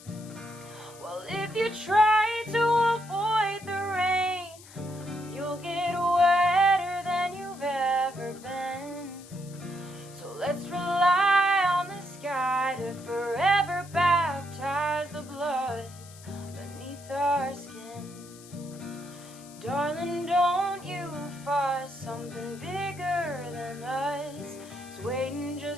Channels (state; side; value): noise; left; hiss, 20 dB below the sound